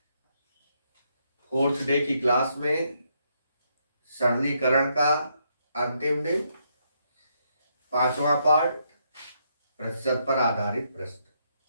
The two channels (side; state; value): both; inverted; correlation -0.76